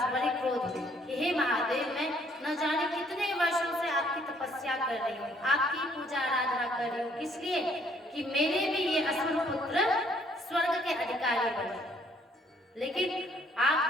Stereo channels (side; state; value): both; normal; correlation 0.64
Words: बड़े क्रोध में कि हे महादेव, मैं न जाने कितने वर्षों से आपकी तपस्या कर रही हूँ, आपकी पूजा आराधना कर रही हूँ, किस लिए कि मेरे भी ये असुर पुत्र स्वर्ग के अधिकारी बने, लेकिन आप